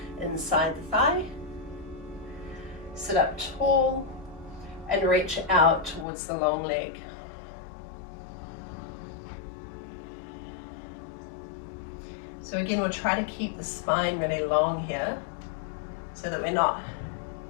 inside the thigh. Sit up tall and reach out towards the long leg. So again, we'll try to keep the spine really long here so that we're not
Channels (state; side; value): drops out; right; at 6.1 s